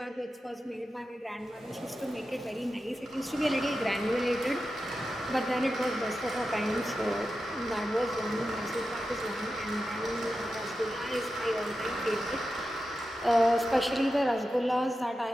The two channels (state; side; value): normal; both; correlation 0.91